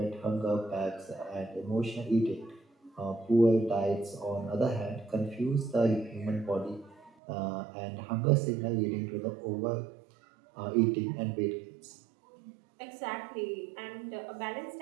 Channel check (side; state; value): left; drops out; at 7.1 s